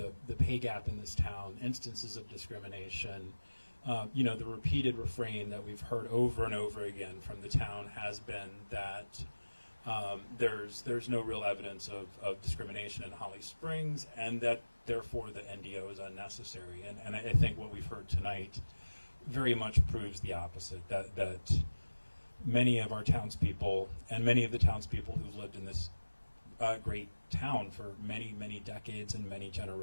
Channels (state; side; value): inverted; both; correlation -1.00